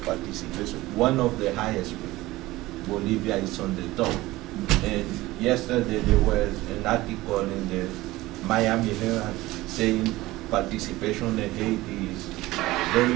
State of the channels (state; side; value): quieter; left; 18.6 dB